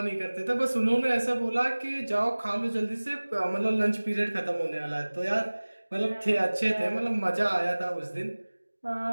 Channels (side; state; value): both; inverted; correlation -1.00